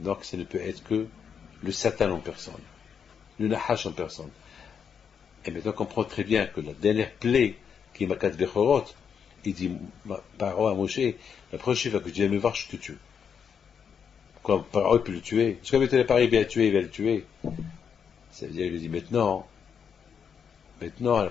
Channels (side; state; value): right; quieter; 7.2 dB